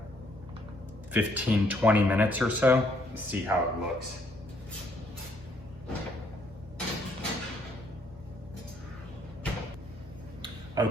15, 20 minutes or so. See how it looks.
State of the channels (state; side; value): normal; both; correlation 0.68